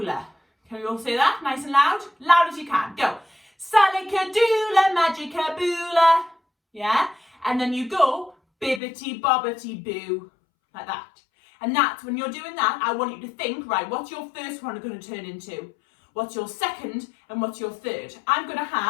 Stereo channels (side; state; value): right; drops out; at 8.8 s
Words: Can we all say that nice and loud? Loud as you can. Go. Salakadoola Magica Boola. Yeah? And then you go bibbity bobbity boo. Like that. And that's when you're doing that, I want you to think, right, what's your first one going to turn into? What's your second and what's your third? I'm going to